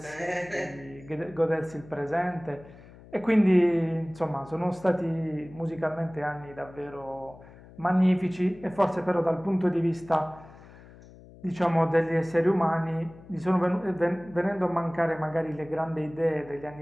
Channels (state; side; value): noise; left; hum, 21 dB below the sound